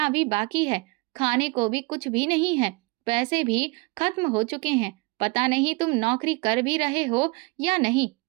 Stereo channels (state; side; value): quieter; left; 26.3 dB